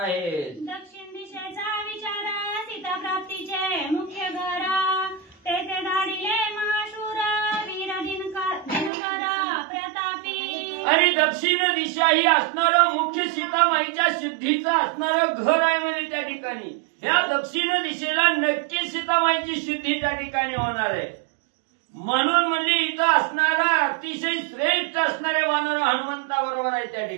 दक्षिण दिशेचा विचार सीता प्राप्तीचे मुख्य घर तेथे धाडिले महाशूर वीर दिनकर प्रतापी. आणि दक्षिण दिशा ही असणारं मुख्य सीतामाईच्या शुद्धीचं असणारं घर आहे म्हणजे त्या ठिकाणी या दक्षिण दिशेला नक्की सीतामाईची शुद्धी त्या ठिकाणी होणार आहे. म्हणून म्हणजे इथं असणारा अतिशय श्रेष्ठ असणारे वानर हनुमंताबरोबर आहे त्या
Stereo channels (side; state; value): left; drops out; at 8.9 s